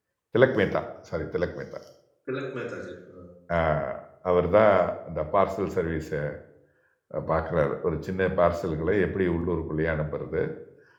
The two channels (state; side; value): identical; both; correlation 1.00